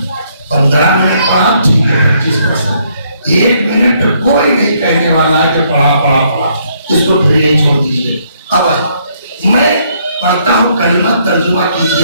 15 मिनट पढ़ा ठीक है 25%, 1 मिनट कोई नहीं कहने वाला है कि पढ़ा पढ़ा पढ़ा, इसको फिर ये छोड़ दीजिए। अब मैं पढ़ता हूँ, कलमा तर्जुमा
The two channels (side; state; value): both; inverted; correlation -0.70